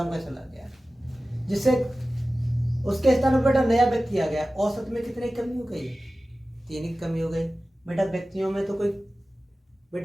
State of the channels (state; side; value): normal; both; correlation 0.96